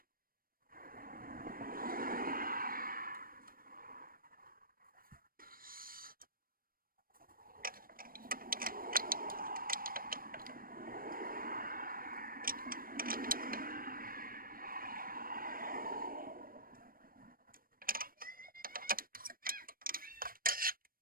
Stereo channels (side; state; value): left; late; 0.41 ms